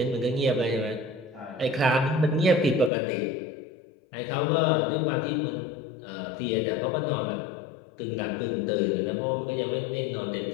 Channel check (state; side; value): drops out; right; at 2.9 s